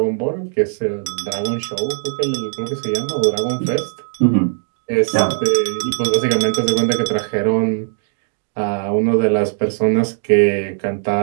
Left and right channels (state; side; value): silent; left; digital silence